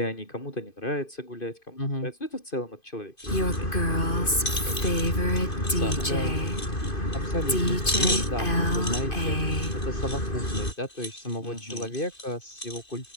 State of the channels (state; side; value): late; right; 2.5 ms